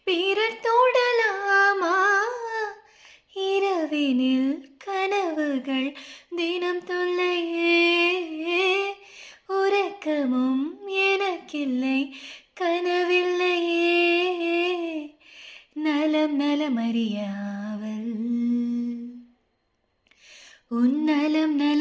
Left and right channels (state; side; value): identical; both; correlation 1.00